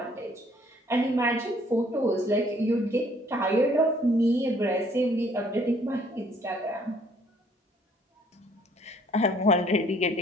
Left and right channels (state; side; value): normal; both; correlation 0.62